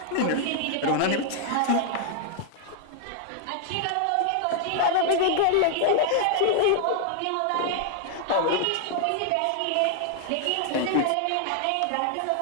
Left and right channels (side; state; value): both; different; correlation 0.00